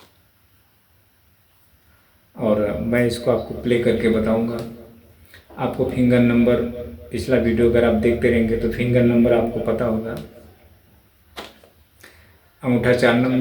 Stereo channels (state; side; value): identical; both; correlation 1.00